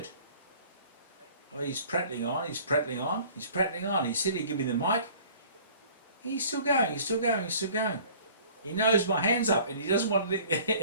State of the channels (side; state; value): both; inverted; correlation -0.50